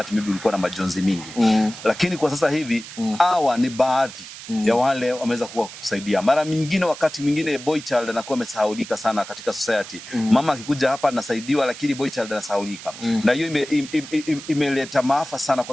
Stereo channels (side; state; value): right; noise; hiss, 14 dB below the sound